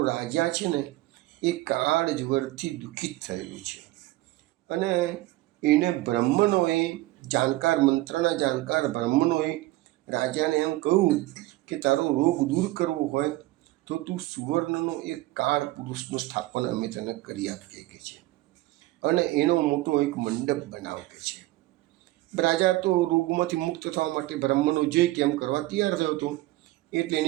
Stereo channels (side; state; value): left; quieter; 18.0 dB